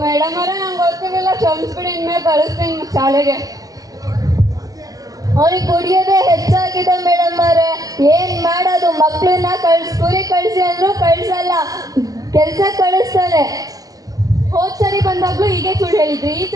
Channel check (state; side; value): late; left; 0.17 ms